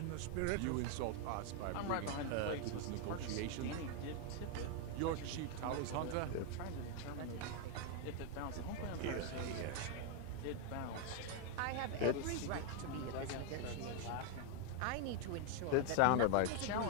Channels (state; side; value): different; both; correlation 0.01